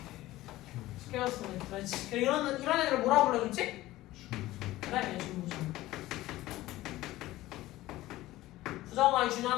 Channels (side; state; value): right; quieter; 16.7 dB